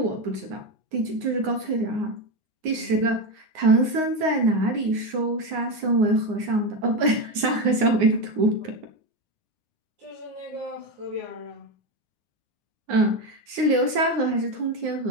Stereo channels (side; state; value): left; late; 9.6 ms